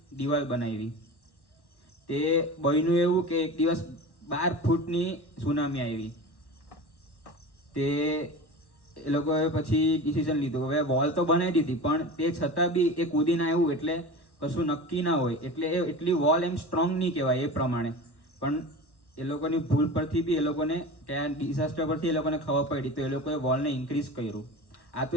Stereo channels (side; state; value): right; late; 1.1 ms